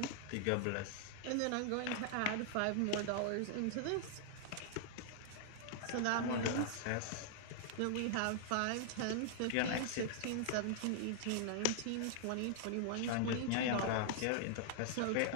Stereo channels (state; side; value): different; both; correlation 0.00